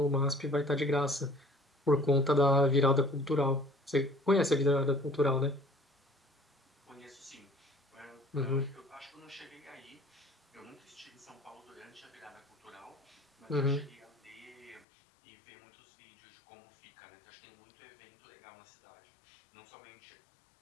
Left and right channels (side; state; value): right; drops out; at 14.9 s